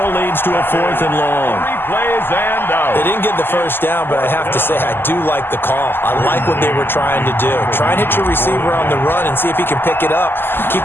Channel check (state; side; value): late; right; 0.10 ms